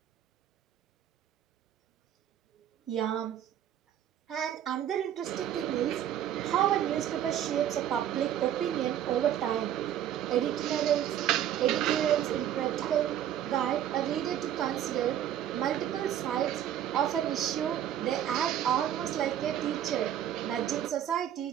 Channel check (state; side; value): quieter; left; 10.8 dB